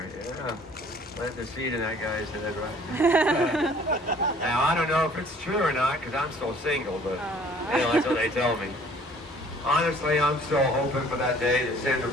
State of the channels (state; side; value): normal; both; correlation 0.55